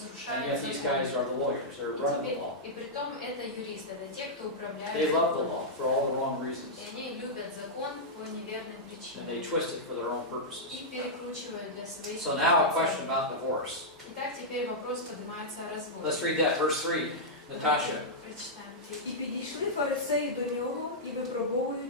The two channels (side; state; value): both; normal; correlation -0.09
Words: yet these guys закон. are the lawyers, they're running the law. И притом это юристы, это те, кто управляет They love the законом. law for all the wrong reasons. И они любят закон по неверным And причинам. they twist it for their own purposes. И перекручивают для своих So now a целей. question about divorce. Итак, теперь вопрос поднимается о разводе. Let's read that, verse 3. Natasha. Прочитаем. І підійшли фарисеї до нього і,